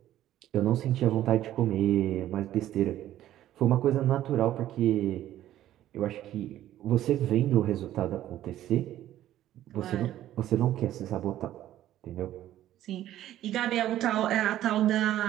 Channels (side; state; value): left; quieter; 13.0 dB